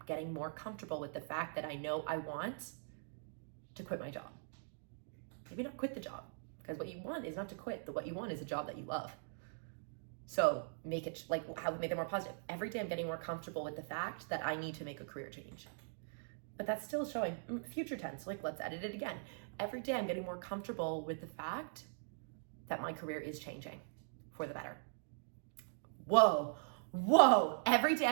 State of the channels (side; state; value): left; silent; digital silence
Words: getting more comfortable with the fact that I know I want to quit my job. Maybe not quit the job, because what you want is not to quit. What you want is a job that you love. So make it make it more positive. Every day I'm getting more comfortable with the fact that I need to make a career change. But that's still showing future tense. Like, let's edit it again. Every day I'm getting more comfortable with the fact that my career is changing for the better. Whoa. Every day